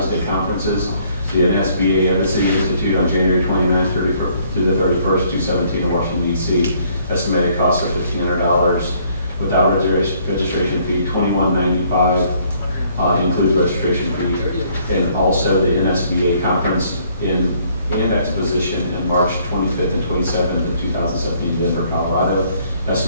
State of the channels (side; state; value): both; inverted; correlation -0.64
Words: conferences: the NSBA Embassy Institute on January 29th through the 31st, 2017 in Washington, D.C. Estimated cost of $1,500 without registration fee, $21.95 includes registration fee, and also the NSBA conference and exposition in March 25th and 27th of 2017 in Denver, Colorado.